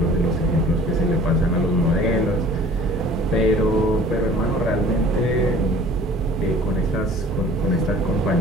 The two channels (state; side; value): normal; both; correlation 0.49